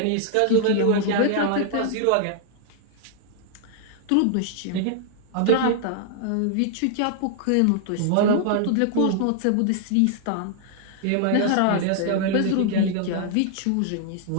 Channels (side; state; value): both; different; correlation -0.01